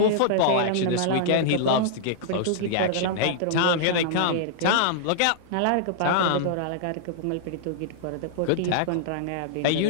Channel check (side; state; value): both; different; correlation -0.01